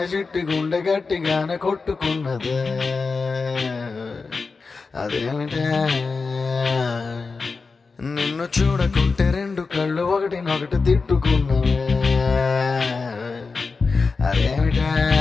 చిట్టి గుండె గట్టిగానే కొట్టుకున్నదే అదేమిటే నిన్ను చూడకుంటే రెండు కళ్ళు ఒకటినొకటి తిట్టుకున్నవే అదేమిటే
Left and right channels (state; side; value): quieter; right; 4.4 dB